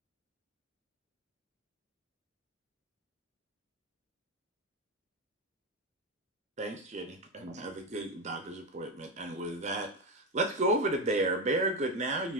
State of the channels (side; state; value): both; normal; correlation 0.14